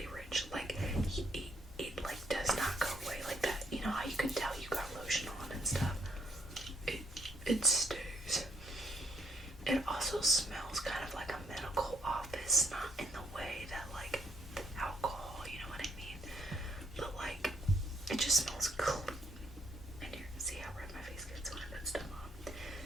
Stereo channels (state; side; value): normal; both; correlation 0.70